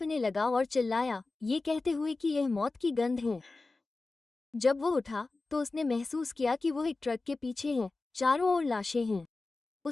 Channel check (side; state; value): right; quieter; 3.5 dB